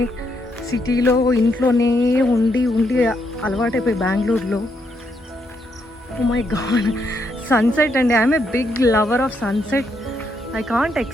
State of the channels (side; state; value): both; normal; correlation 0.77